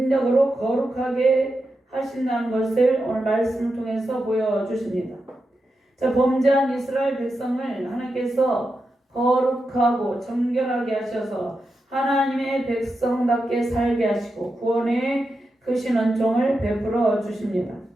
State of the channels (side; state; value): both; normal; correlation 0.88